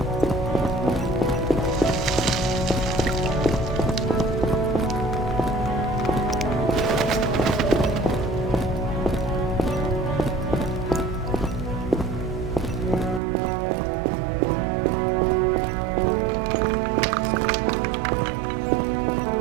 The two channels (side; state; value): left; drops out; at 13.2 s